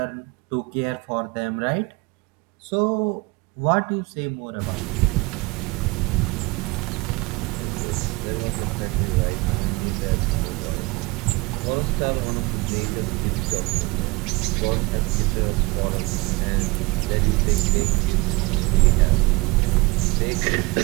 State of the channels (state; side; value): quieter; left; 23.7 dB